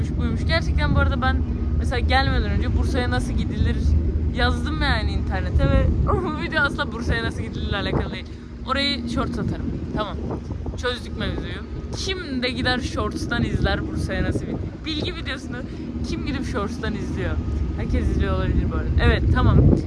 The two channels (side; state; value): both; identical; correlation 1.00